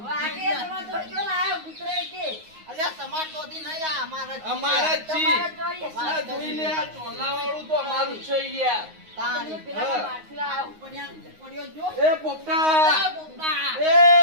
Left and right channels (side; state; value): left; late; 9.5 ms